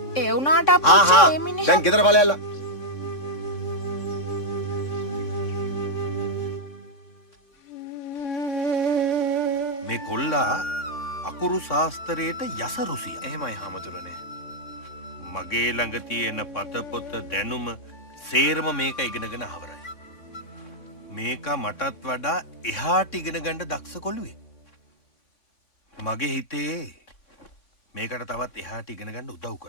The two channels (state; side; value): late; right; 3.6 ms